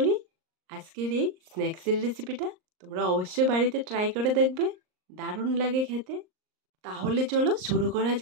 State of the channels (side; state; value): left; late; 38 ms